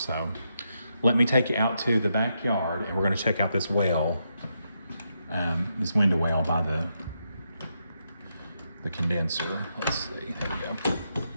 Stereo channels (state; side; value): inverted; both; correlation -0.81